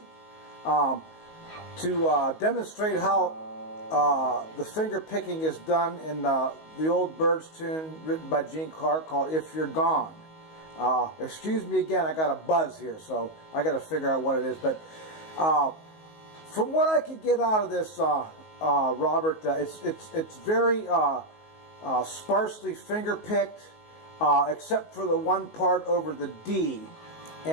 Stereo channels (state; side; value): late; right; 19 ms